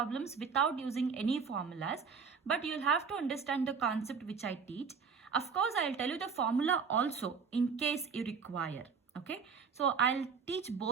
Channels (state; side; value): quieter; left; 5.7 dB